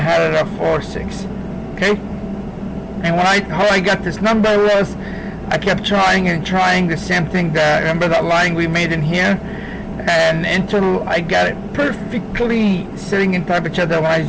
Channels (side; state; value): both; identical; correlation 1.00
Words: had it at 4.6, okay? And how I got this number was I kept trying and trying the same thing. Remember that line we made in here? And until I got it perfectly sitting in top of each other when I